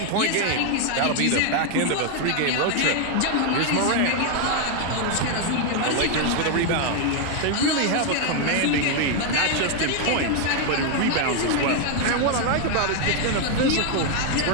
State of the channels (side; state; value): both; different; correlation 0.00